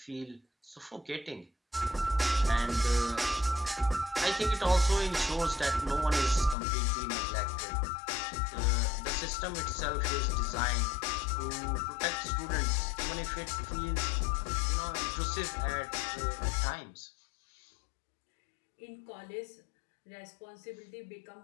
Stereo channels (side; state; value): right; drops out; at 6.6 s